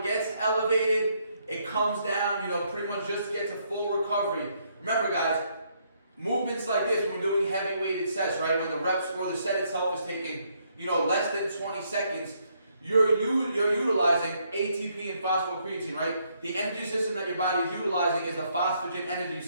gets elevated, it comes down, pretty much just gets a full recovery. Remember guys, movements like this, when we're doing heavy weighted sets, right, when the reps or the set itself is taking, less than 20 seconds, you're utilizing ATP and phosphocreatine, right? The energy system that your body is utilizing is the phosphagen energy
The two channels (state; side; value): inverted; both; correlation -0.73